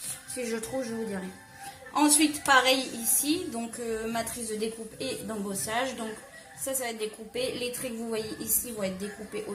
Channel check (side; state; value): both; identical; correlation 1.00